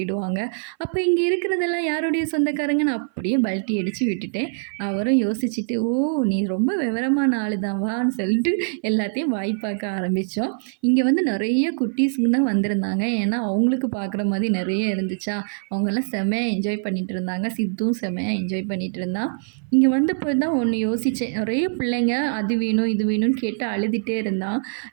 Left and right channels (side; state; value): left; silent; 57 dB below the other